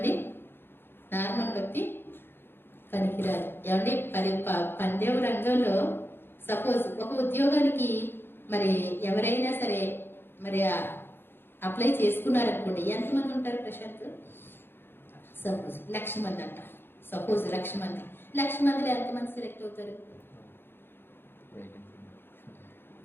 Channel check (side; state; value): right; late; 0.10 ms